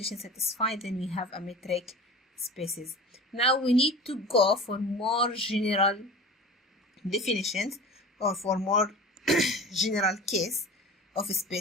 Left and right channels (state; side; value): normal; both; correlation 0.36